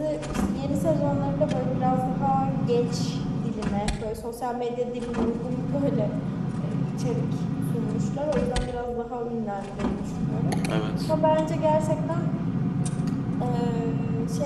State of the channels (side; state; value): both; identical; correlation 1.00